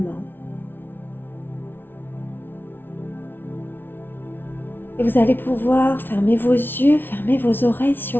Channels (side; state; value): right; late; 0.10 ms